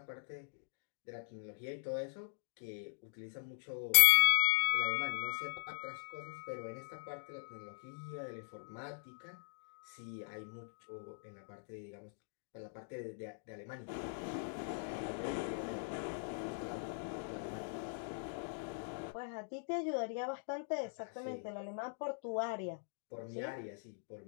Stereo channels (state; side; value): silent; right; digital silence